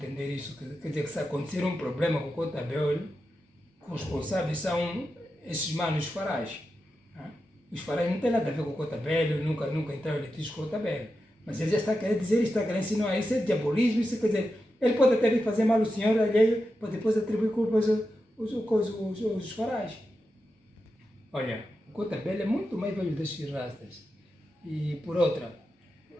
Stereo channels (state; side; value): normal; both; correlation 0.89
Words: isso, quer dizer que se acontecer um problema com o Cotabelo, os responsáveis são esses manos farais. Os farais não têm nada a ver com o Cotabelo, nunca entraram em litígio com o Cotabelo. Mas ele já está querendo dizer, está querendo ensinar isso, é diabolismo, isso quer dizer, ele pode até vir fazer mal ao senhor alheio, para depois atribuir culpas aos farais. Olha, o Cotabelo é muito mais velho desses rastas. E por outra,